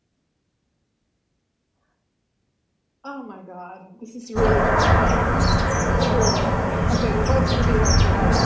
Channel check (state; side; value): identical; both; correlation 1.00